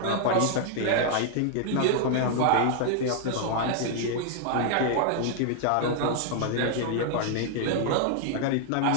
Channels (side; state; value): both; different; correlation 0.00